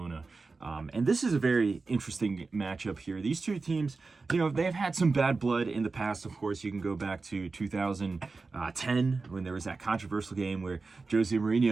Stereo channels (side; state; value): left; quieter; 4.0 dB